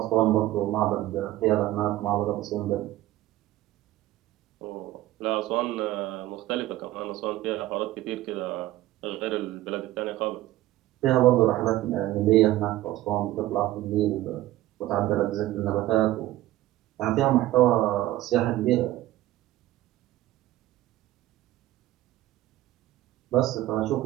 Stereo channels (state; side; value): quieter; left; 15.5 dB